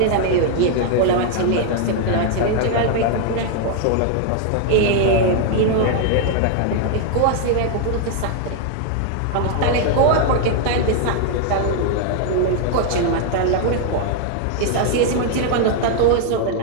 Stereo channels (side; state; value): both; different; correlation 0.00